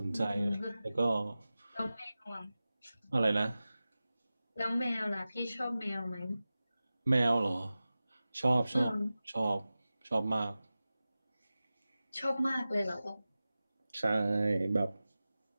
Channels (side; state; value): both; inverted; correlation -0.96